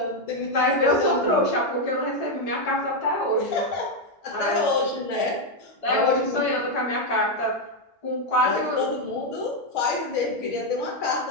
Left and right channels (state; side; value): normal; both; correlation 0.03